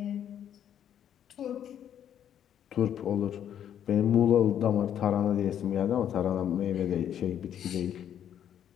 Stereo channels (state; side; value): quieter; right; 9.7 dB